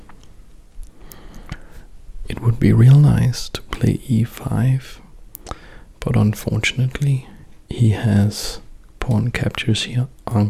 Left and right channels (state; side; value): identical; both; correlation 1.00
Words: It would be real nice to play e5, but unfortunately he has pawn captures here